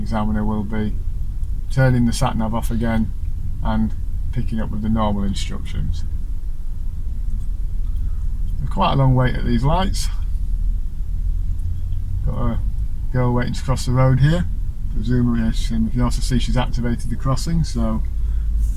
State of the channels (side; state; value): both; identical; correlation 1.00